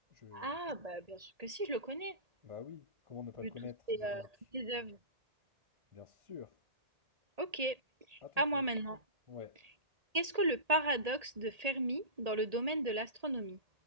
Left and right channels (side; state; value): left; late; 1.8 ms